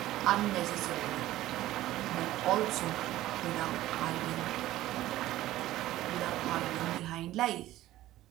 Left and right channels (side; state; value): left; quieter; 15.2 dB